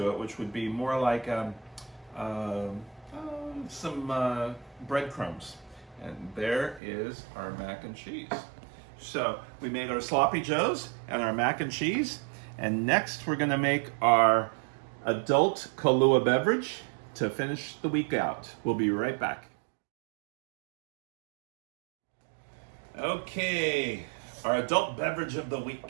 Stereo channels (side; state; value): left; drops out; at 6.8 s